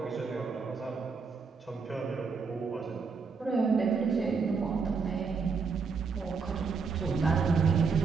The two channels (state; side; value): quieter; left; 5.1 dB